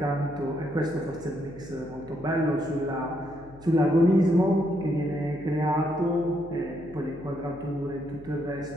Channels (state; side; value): noise; left; hum, 20 dB below the sound